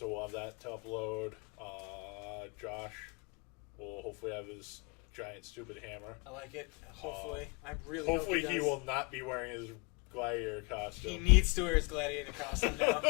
we'll have that to upload. Josh will hopefully have his giant stupid hammer. I like it. Hopefully. I really Hopefully hope he does. will not be wearing his gladiator costume. He needs to wear his gladiator costume now.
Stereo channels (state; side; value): quieter; right; 31.0 dB